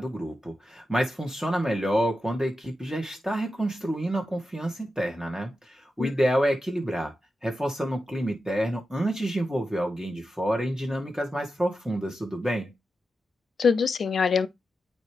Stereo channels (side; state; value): both; normal; correlation 0.90